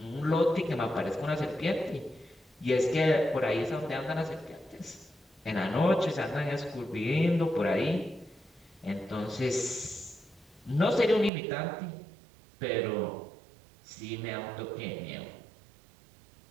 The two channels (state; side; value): drops out; left; at 11.3 s